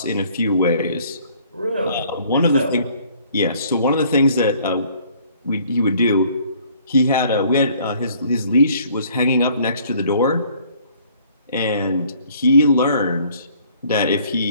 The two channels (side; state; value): both; inverted; correlation -0.59